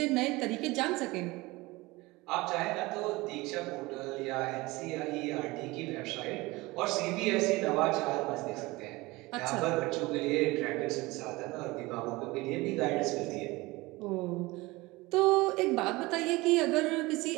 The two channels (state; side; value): quieter; left; 21.6 dB